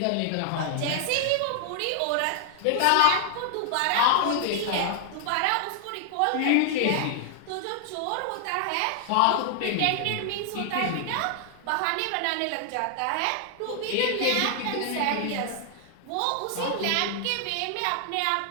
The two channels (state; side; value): different; both; correlation 0.00